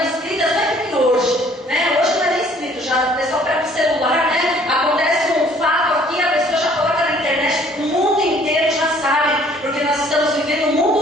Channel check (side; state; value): both; normal; correlation 0.58